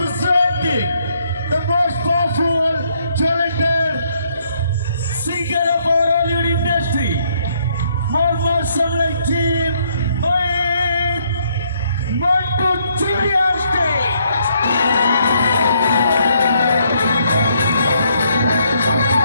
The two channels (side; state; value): both; inverted; correlation -0.71